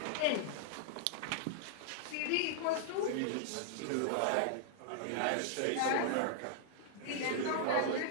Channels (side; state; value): both; different; correlation -0.01